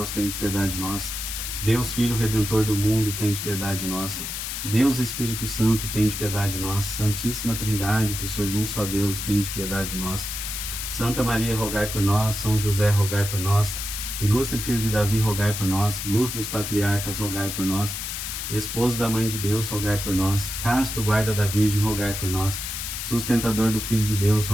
tem de piedade de nós. Deus, Filho Redentor do mundo, tem de piedade de nós. Deus, Espírito Santo, tem de piedade de nós. Santíssima Trindade, que sois um só Deus, tem de piedade de nós. Santa Maria, rogai por nós. São José, rogai por nós. Ilustre Filho de Davi, rogai por nós. Luz dos patriarcas, rogai por nós. Esposo da Mãe de Deus, rogai por nós. Casto guarda da Virgem, rogai por nós. Sustentador do Filho de Deus,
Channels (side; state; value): left; noise; hiss, 5 dB below the sound